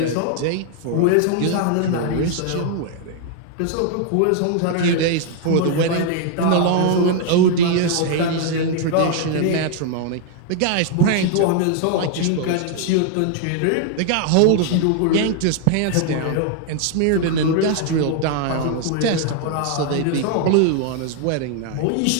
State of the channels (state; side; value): different; both; correlation 0.00